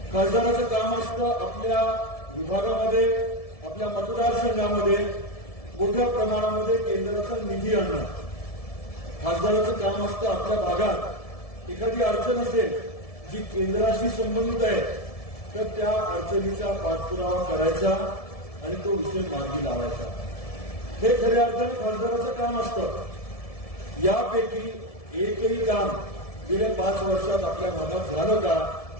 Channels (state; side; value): late; right; 1.7 ms